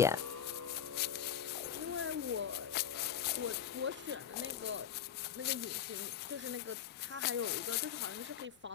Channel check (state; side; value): quieter; right; 8.9 dB